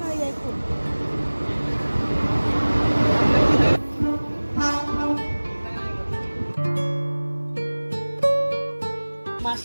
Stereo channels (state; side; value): inverted; both; correlation -1.00